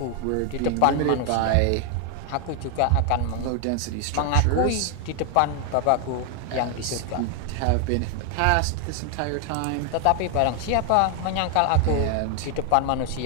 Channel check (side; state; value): both; different; correlation 0.00